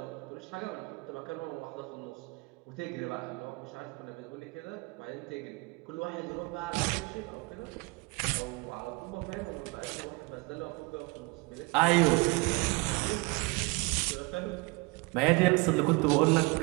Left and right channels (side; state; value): left; quieter; 27.6 dB